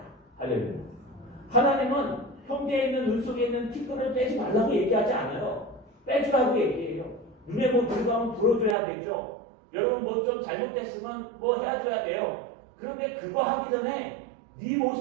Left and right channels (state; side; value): drops out; left; at 8.8 s